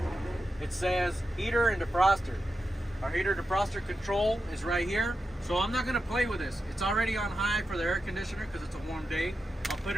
It says heater and defroster. Our heater defroster control is right here. So I'm not going to play with this. It's already on high for the air conditioner because it's a warm day. I'll put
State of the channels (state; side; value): normal; both; correlation 0.89